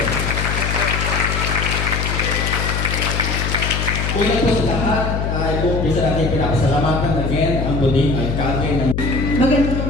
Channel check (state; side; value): noise; left; hum, 1 dB below the sound